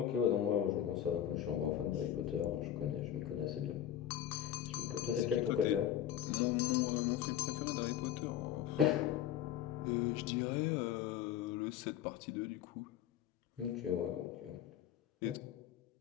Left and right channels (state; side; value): quieter; right; 10.8 dB